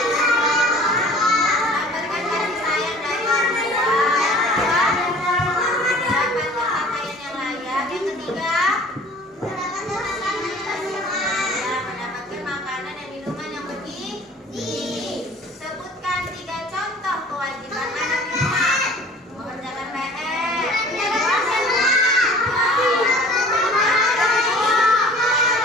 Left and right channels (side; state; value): both; normal; correlation 0.47